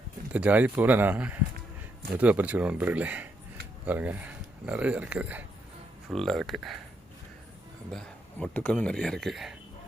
இந்த ஜாதி பூவில் நான் மெதுவாக பறிச்சுக்கிறேன் நண்பர்களே. பாருங்கள், நிறையா இருக்குது, ஃபுல்லாக இருக்குது. அந்த மொட்டுக்களும் நிறையா இருக்குது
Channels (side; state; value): both; normal; correlation 0.78